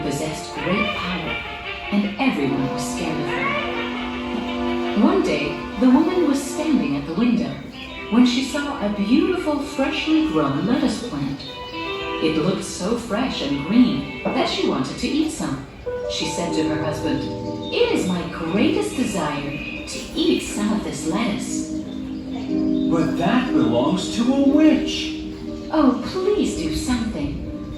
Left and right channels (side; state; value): both; identical; correlation 1.00